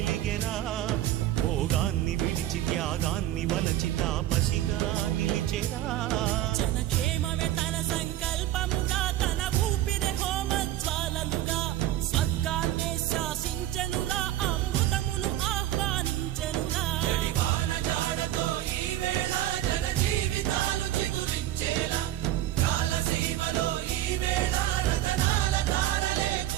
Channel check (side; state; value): left; quieter; 13.4 dB